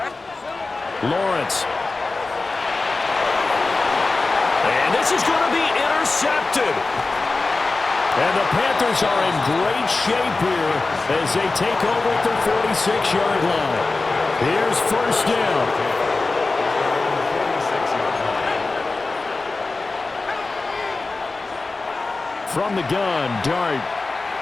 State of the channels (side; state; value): right; quieter; 3.6 dB